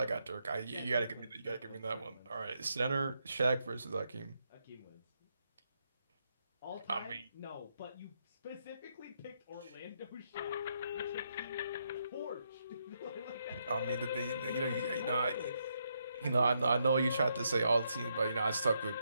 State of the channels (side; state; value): both; inverted; correlation -0.78